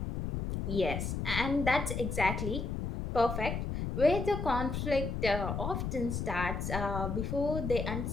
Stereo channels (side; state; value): left; noise; rumble, 3 dB below the sound